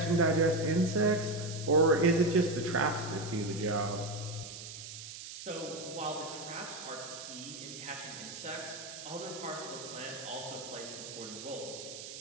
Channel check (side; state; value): right; noise; hiss, 11 dB below the sound